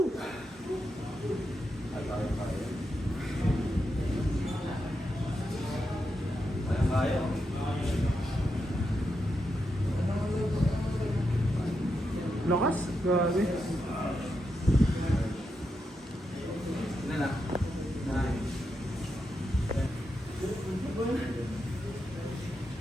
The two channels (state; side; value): normal; both; correlation 0.85